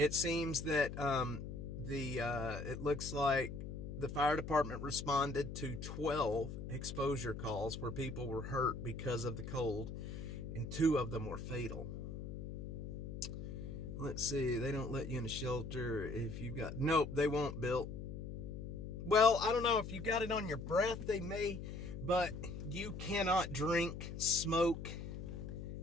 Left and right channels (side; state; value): left; noise; hum, 7 dB below the sound